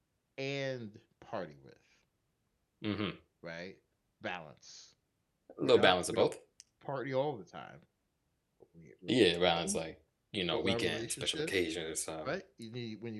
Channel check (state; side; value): identical; both; correlation 1.00